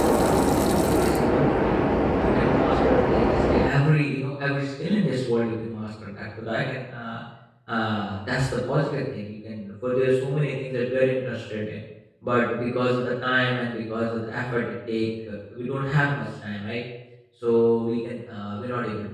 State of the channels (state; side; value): identical; both; correlation 1.00